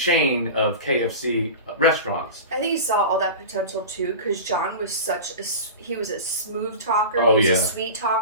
of KFC restaurants. I think he saw all that potential too, because John was he was a smooth talker. Oh, he was yeah. a sweet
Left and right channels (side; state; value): both; inverted; correlation -0.31